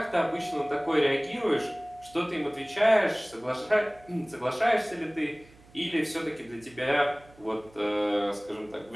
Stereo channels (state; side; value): noise; right; hum, 25 dB below the sound